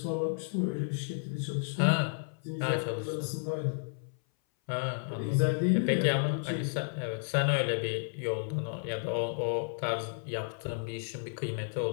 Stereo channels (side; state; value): right; silent; 56 dB below the other